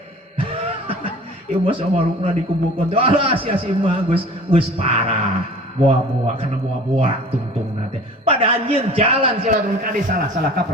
ieu mah samarukna dikumpulkeun alah sia si mah geus parah buah-buah karena buah-buah tungtung nate pada anjing jalan silaturahmi kade salah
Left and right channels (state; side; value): normal; both; correlation 0.44